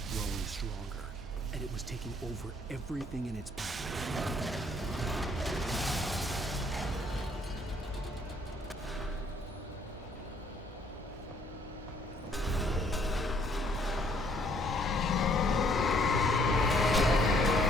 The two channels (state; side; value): normal; both; correlation 0.64